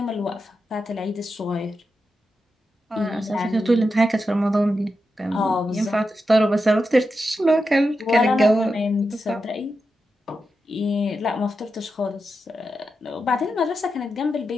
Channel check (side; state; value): both; normal; correlation 0.88